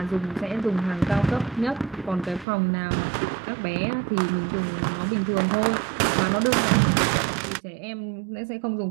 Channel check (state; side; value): drops out; left; at 2.5 s